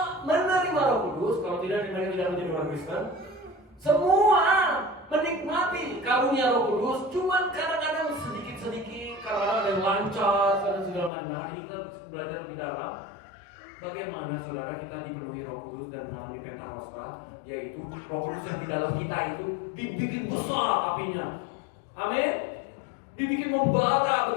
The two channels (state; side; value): drops out; right; at 11.1 s